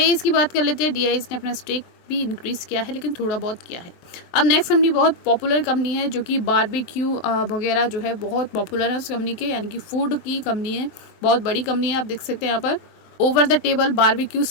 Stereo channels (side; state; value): right; late; 23 ms